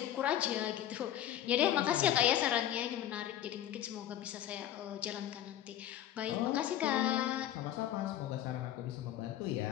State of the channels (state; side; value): quieter; right; 11.8 dB